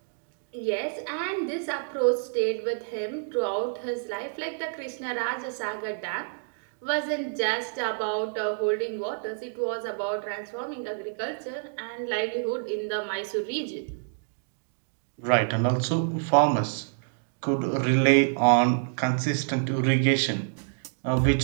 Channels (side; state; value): left; silent; digital silence